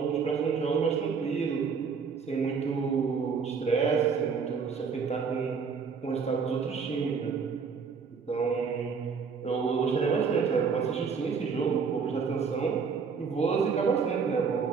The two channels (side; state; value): left; quieter; 5.7 dB